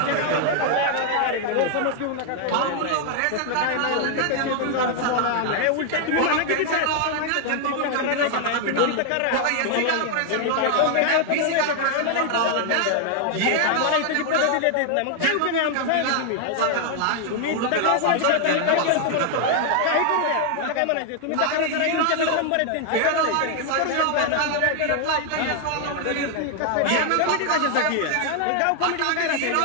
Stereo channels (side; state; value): both; different; correlation 0.00